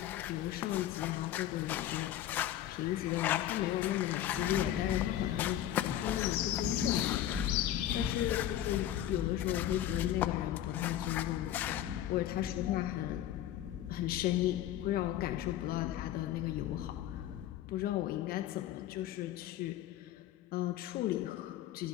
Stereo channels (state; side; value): quieter; right; 12.2 dB